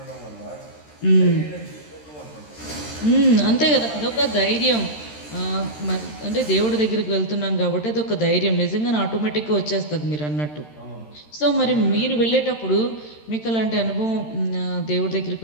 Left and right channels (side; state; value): right; late; 13 ms